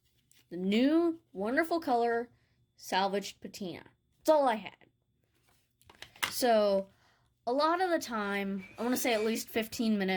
the new wonderful color, Salvaged Patina. That's all I had. So, a lot of the time, I want to say at least 15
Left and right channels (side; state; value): both; identical; correlation 1.00